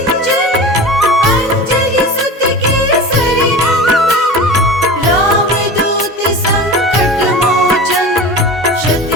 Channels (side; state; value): both; normal; correlation 0.32